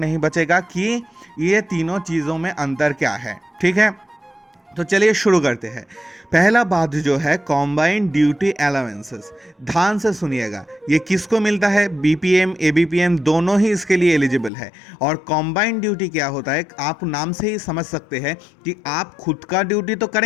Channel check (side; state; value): right; drops out; at 14.5 s